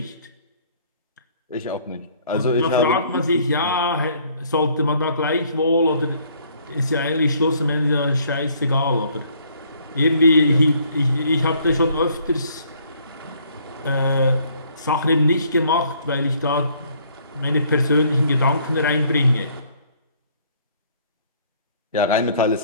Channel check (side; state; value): both; inverted; correlation -0.62